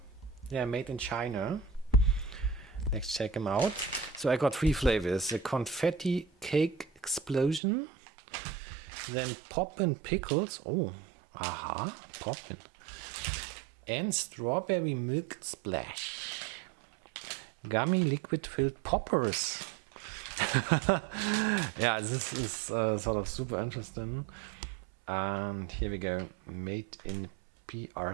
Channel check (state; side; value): drops out; left; at 7.6 s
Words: they're made in China. Let's check them out. So I got 3 flavors: the confetti cake explosion, then Poppin Pickeles. Oh, aha, Poppin. And strawberry milk splash. Gummy liquid filled poppers. Yeah, this is sort of super interesting. And here we go. Made in